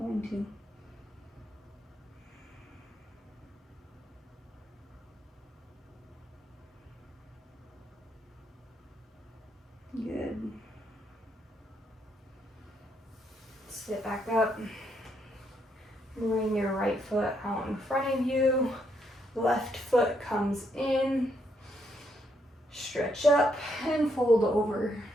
to. Good. Sit back up. Bring your right foot out in front of you. Left foot comes in. Stretch up and fold over.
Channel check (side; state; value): both; normal; correlation 0.75